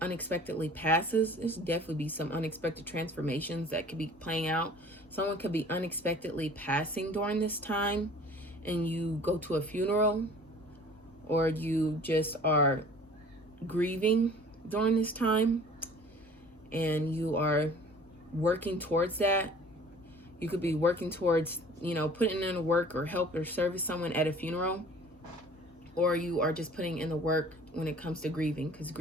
passes. There's definitely be some unexpected transformations that could be playing out. Someone could be unexpectedly passing during this time, and you go to a funeral, or you just are grieving during this time, and you are working towards that. You could be working towards, you know, putting in the work or help or service someone at a funeral, or you are just putting in the work when it comes to grieving, because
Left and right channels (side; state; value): both; normal; correlation 0.48